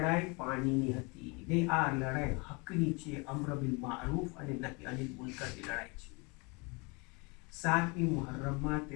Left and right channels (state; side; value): quieter; right; 29.7 dB